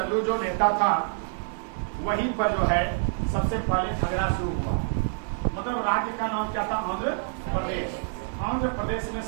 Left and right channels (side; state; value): left; silent; digital silence